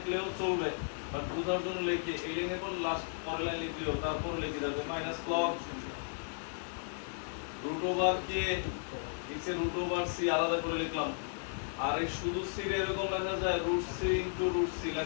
চলবে, বাট বুঝার জন্য লিখে এই লাইনের পর লাস্ট পরের লাইন লিখলেও তারপর লিখে দেবে minus log root over K নিচে রুট ওভার সি আলাদা করে লিখলাম। আর এই শুধু সি এর এরকম লেখা যায়, root C into root C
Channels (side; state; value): right; silent; 55 dB below the other